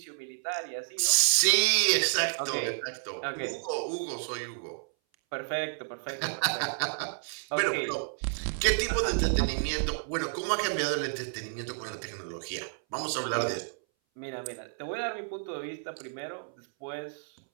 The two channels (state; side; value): silent; left; 57 dB below the other